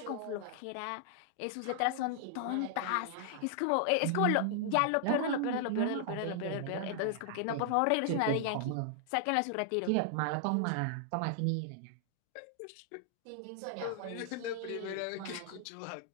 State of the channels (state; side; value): different; both; correlation -0.01